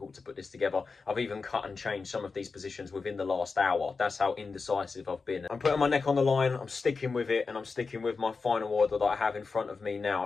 to put this together. I've even cut and changed some of these positions within the last hour. That's how indecisive I've been. I'm putting my neck on the line, I'm sticking with it, and I'm sticking with my final order that I have in front of me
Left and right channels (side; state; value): right; quieter; 4.5 dB